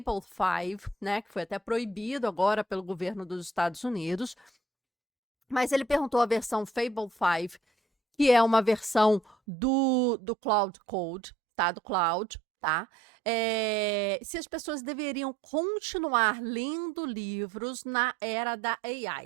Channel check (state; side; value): drops out; left; at 9.3 s